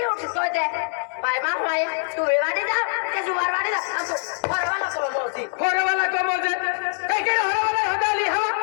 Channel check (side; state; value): right; silent; digital silence